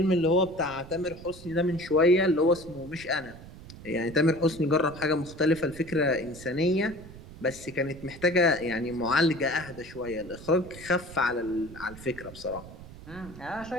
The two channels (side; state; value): right; noise; rumble, 16 dB below the sound